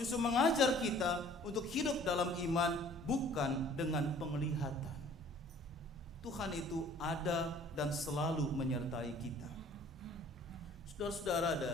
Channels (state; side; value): normal; both; correlation 0.53